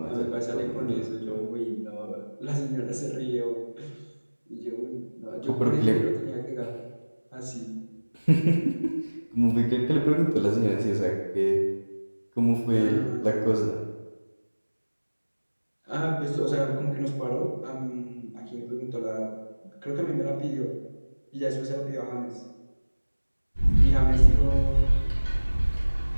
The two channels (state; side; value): inverted; both; correlation -1.00